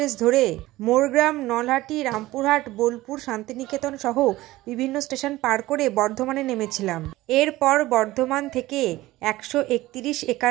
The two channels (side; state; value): left; quieter; 17.6 dB